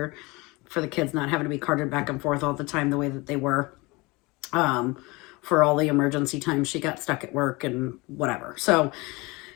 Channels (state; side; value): quieter; right; 24.4 dB